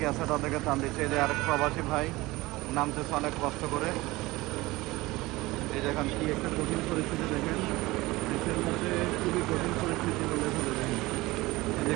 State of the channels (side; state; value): left; quieter; 20.3 dB